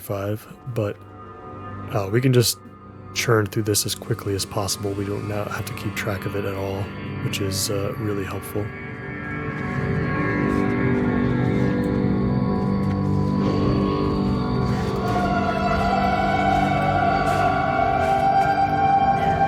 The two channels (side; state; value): both; identical; correlation 1.00